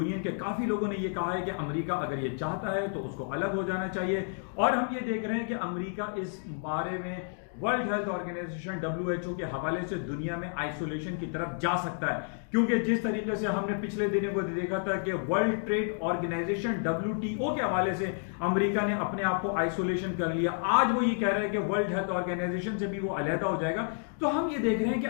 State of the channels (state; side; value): silent; right; 58 dB below the other